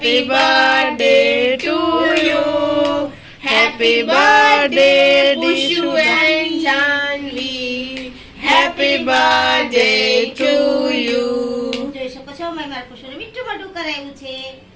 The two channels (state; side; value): identical; both; correlation 1.00